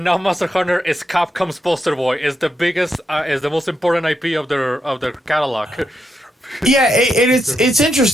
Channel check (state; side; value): normal; both; correlation 0.82